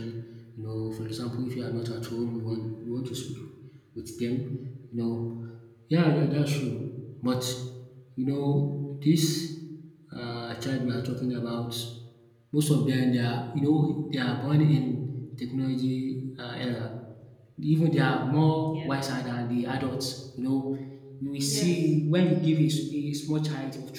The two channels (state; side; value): identical; both; correlation 1.00